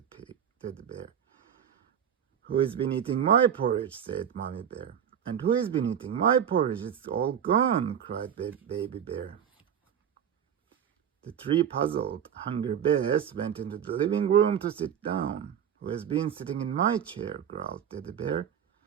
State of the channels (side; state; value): left; quieter; 8.7 dB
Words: Bear. Who has been eating my porridge? Said Mommy Bear. And who has been eating my porridge? It's all gone, cried Baby Bear. The three puzzled, hungry bears went into the living room to sit down. Who has been sitting in my chair? Growled Teddy Bear.